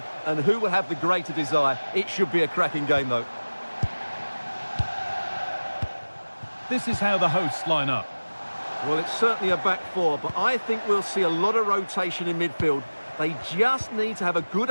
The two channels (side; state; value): both; inverted; correlation -1.00